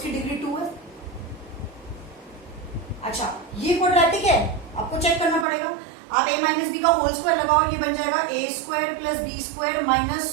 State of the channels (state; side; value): drops out; left; at 5.5 s